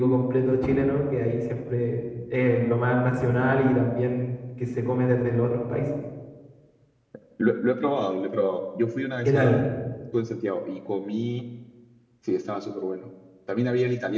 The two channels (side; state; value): both; identical; correlation 1.00